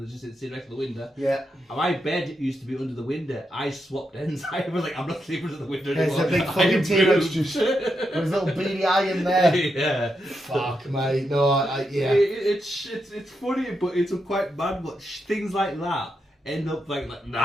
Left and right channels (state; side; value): normal; both; correlation 0.84